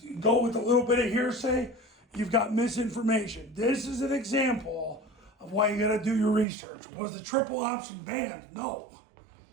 go with a little bit of hearsay. You've got misinformation. This is an example of why you got to do your research. Was the triple option banned? No.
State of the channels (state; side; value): drops out; left; at 6.5 s